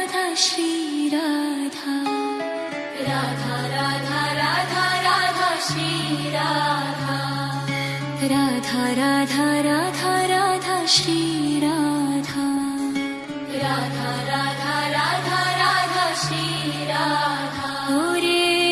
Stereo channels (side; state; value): both; identical; correlation 1.00